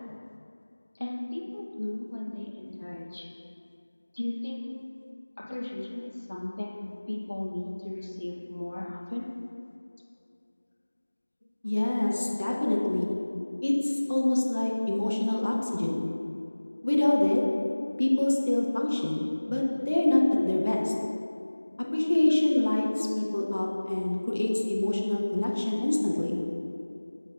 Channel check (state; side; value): inverted; both; correlation -1.00